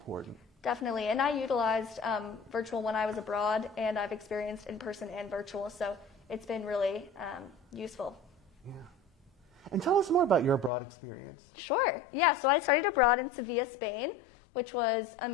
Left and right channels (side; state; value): right; drops out; at 10.7 s